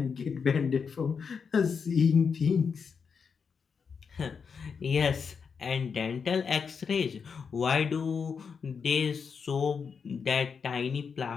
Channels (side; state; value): right; quieter; 6.0 dB